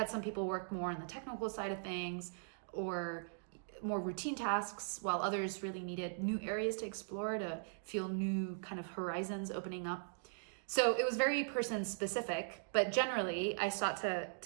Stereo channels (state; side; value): silent; left; digital silence